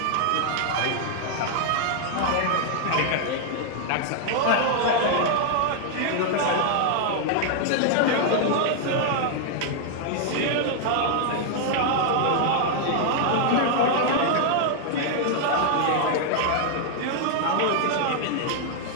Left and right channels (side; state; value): both; different; correlation 0.00